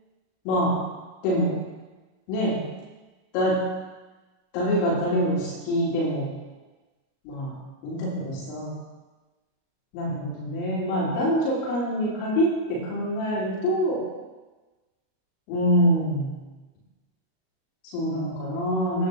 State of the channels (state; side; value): late; right; 38 ms